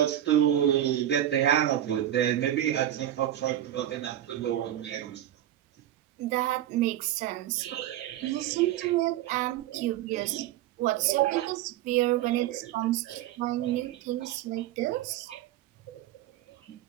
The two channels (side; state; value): left; quieter; 12.4 dB